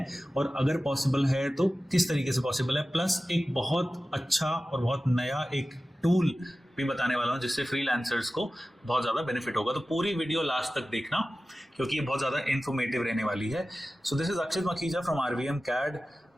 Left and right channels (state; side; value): normal; both; correlation 0.95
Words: और अगर पॉसिबल है तो किस तरीके से पॉसिबल है। प्लस एक बहुत अच्छा और बहुत नया एक टूल भी बताने वाला हूं जिससे फ्रीलांसर्स को बहुत ज़्यादा बेनिफिट होगा। तो पूरी वीडियो लास्ट तक देखना क्योंकि ये बहुत ज़्यादा इन्फॉर्मेटिव रहने वाली है। So this is Akshit Makhija from RVM CAD.